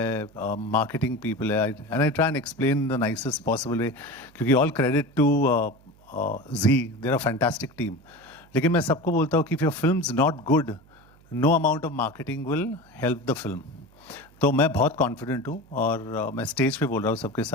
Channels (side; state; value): right; noise; hum, 28 dB below the sound